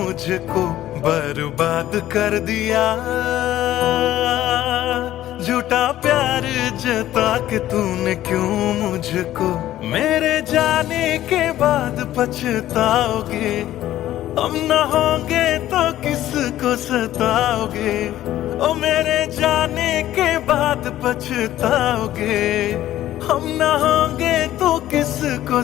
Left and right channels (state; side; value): quieter; right; 13.6 dB